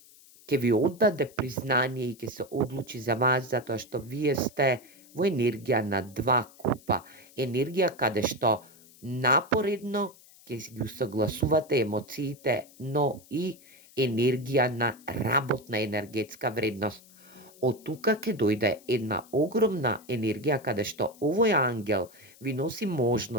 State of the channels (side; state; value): left; noise; hiss, 24 dB below the sound